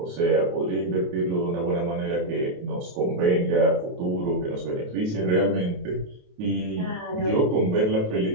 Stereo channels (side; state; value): left; late; 28 ms